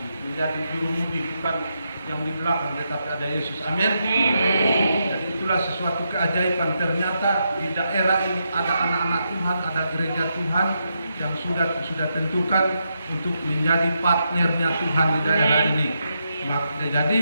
menjadi jurumudi, bukan yang di belakang, tetapi ada Yesus. Amin. Jadi itulah sesuatu keajaiban. Ternyata di daerah ini ada anak-anak Tuhan, ada gereja Tuhan yang sudah tentukan untuk menjadi partnernya Tuhan di daerah ini. Jadi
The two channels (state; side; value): inverted; both; correlation -0.83